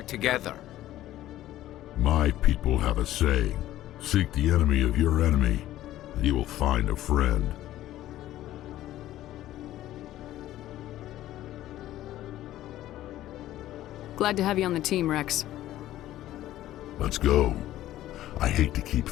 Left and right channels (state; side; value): quieter; right; 14.1 dB